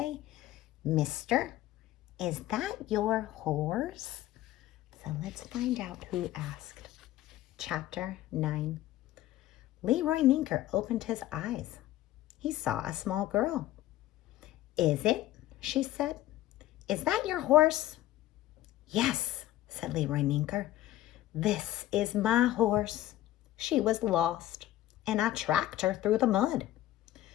"Mister, is that your horse?" So let's find out who asked. Chapter 9. Leroy Ninker opened his eyes. He saw a small girl. "Is it?" she said. "Is that your horse?" "Yes," said Leroy Ninker. "This is my horse. She was lost, and I tracked her through the mud.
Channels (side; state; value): right; quieter; 14.5 dB